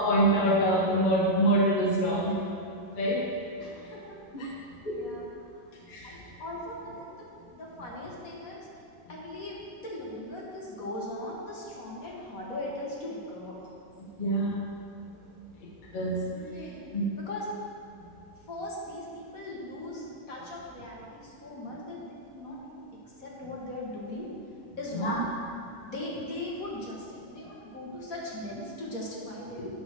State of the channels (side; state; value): both; normal; correlation -0.07